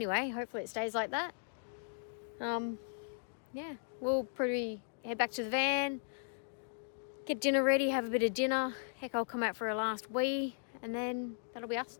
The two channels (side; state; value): right; silent; digital silence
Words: Hopefully it stays like that. Yeah, we'll probably head back to the van, get dinner ready, have a bit of dinner. Heck, I'll come out for a last wee, and then that'll be us